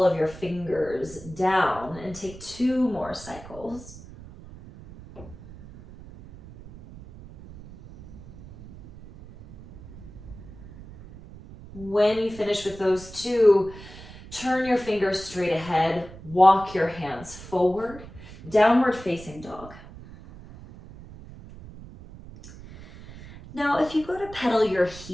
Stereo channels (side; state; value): right; noise; rumble, 17 dB below the sound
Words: of your fingers down and take 2 more cycles. When you finish with those 2, turn your fingers straight ahead, walk your hands forward, downward facing dog. Now, if you go to pedal your